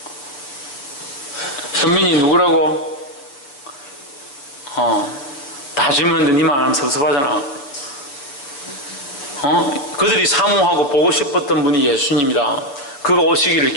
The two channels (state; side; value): late; right; 7.1 ms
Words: 현민이 누구라고? 다 질문했는데 니만 안 하면 섭섭하잖아. 그들이 사모하고 보고 싶었던 분이 예수님이다. 그가 오시기를